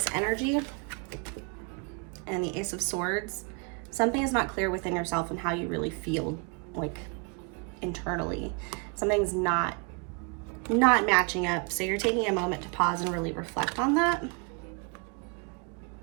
energy and the Ace of Swords, something is not clear within yourself and how you really feel, like internally. Something's not matching up. So you're taking a moment to pause and really reflect on that.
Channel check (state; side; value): quieter; left; 34.6 dB